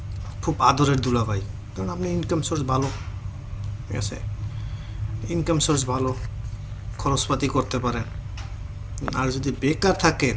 খুব আদরের দুলাভাই, কারণ আপনি ইনকাম সোর্স ভালো, ঠিক আছে? ইনকাম সোর্স ভালো, খরচপাতি করতে পারেন। আর যদি বেকার থাকেন,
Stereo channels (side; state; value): both; identical; correlation 1.00